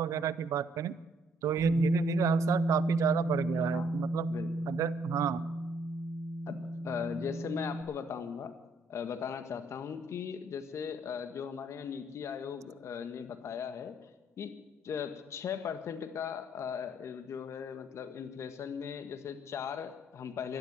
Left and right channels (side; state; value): both; normal; correlation 0.67